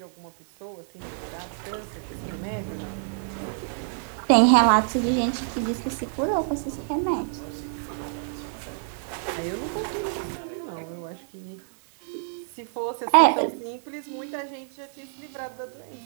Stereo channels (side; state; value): left; silent; digital silence